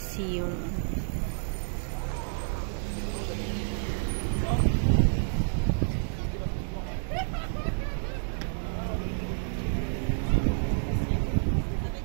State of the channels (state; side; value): silent; left; digital silence